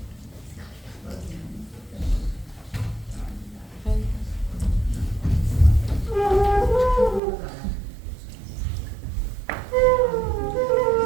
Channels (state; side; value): drops out; left; at 7.2 s